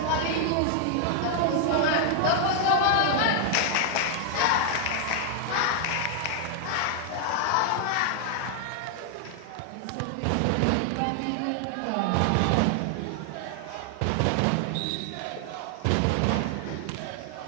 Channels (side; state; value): both; different; correlation 0.00